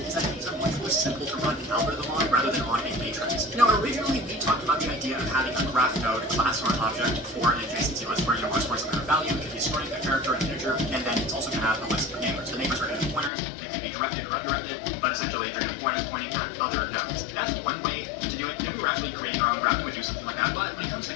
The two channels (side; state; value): right; drops out; at 13.3 s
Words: is that these are much more simple to run an algorithm on rather than on a matrix. Now, originally we talked about the idea of having a graph node, class, or an object for an adjacency list where we're storing some kind of value. It could be storing a character, an integer, and then it's also going to have a list of neighbors. The neighbors are going to be pointers. They can be directed or undirected, but essentially they're going to be pointers pointing at other nodes. That's one way to do it. If we were actually creating our own graph, we would do something like that. But when it comes to